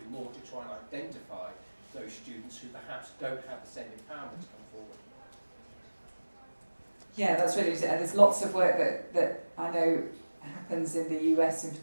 do more to try and identify those students who perhaps don't have the same empowerment to come forward. Yeah, that's really interesting. And there's lots of work that I know happens in the US in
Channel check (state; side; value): inverted; both; correlation -1.00